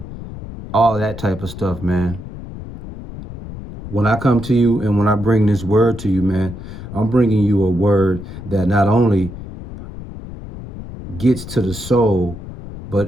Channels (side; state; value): left; noise; rumble, 12 dB below the sound